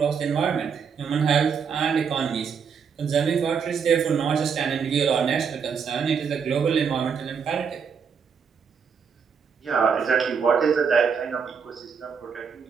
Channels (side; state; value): left; quieter; 6.4 dB